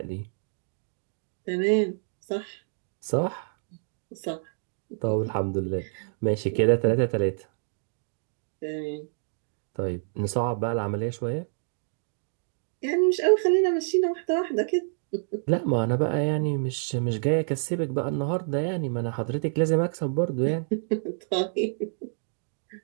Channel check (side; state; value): left; silent; digital silence